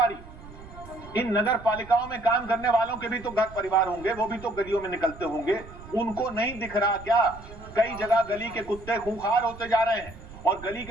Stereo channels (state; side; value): noise; right; rumble, 17 dB below the sound